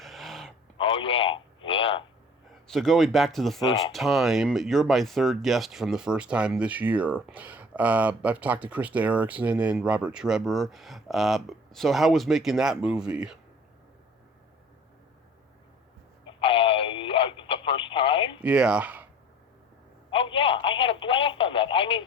Oh, yeah. So going back to the first time, you're my third guest from the first time this year. I've talked to Krista Erickson and Robert Trebor. So how was making that movie? The first time? Yeah. Oh, yeah, I had a blast on that. I mean,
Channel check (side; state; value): both; normal; correlation 0.49